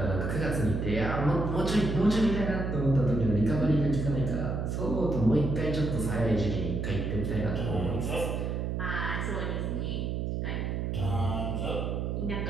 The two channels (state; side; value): noise; right; hum, 1 dB below the sound